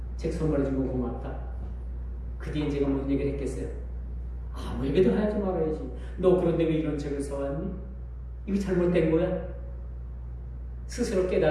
책 선물해준 거 고맙다. 그 뒤에 제가 무슨 얘기를 했겠어요? 아무 얘기도 하지 말아야지. 너 그런데 왜 이런 책을 사왔니? 이거 잘못된 거야? 스스로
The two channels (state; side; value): identical; both; correlation 1.00